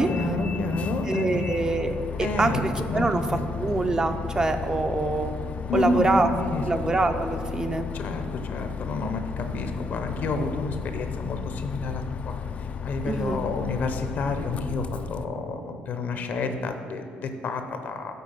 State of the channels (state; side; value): normal; both; correlation 0.75